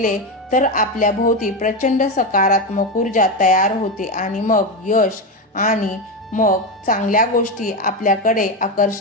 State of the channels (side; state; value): both; normal; correlation 0.13